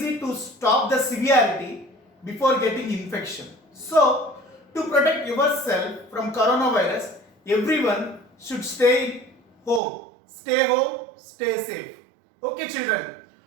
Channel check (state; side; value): drops out; left; at 9.8 s